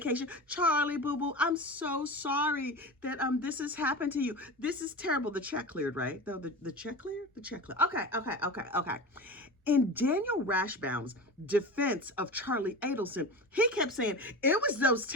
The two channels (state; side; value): normal; both; correlation 0.29